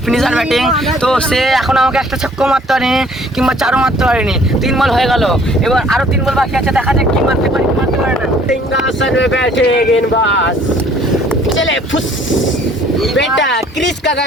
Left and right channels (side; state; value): both; normal; correlation 0.57